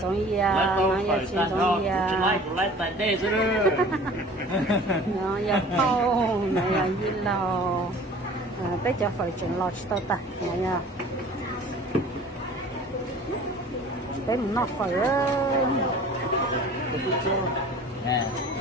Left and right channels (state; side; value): normal; both; correlation 0.45